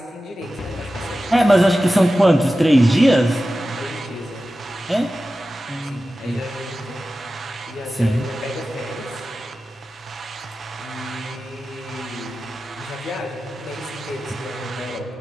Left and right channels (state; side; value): normal; both; correlation 0.94